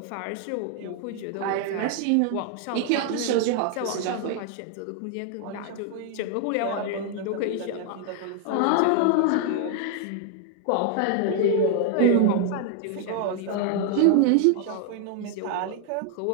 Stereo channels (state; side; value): different; both; correlation 0.00